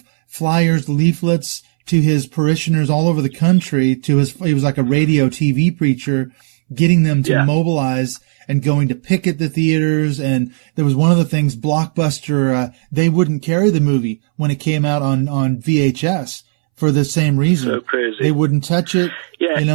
flyers, leaflets to his parishioners all over the country. He was like a radio TV preacher, getting them to mobilize. and going to picket the theaters. And there was one of the things, Blockbuster, they wouldn't carry the movie when it came out on VHS for the same reason. So crazy. They wouldn't touch it. Yeah. You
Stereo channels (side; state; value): left; silent; 67 dB below the other